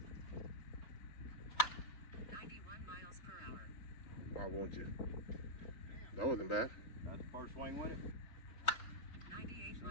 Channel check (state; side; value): late; right; 4.1 ms